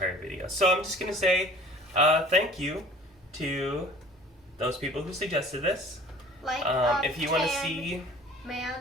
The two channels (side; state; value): both; normal; correlation 0.47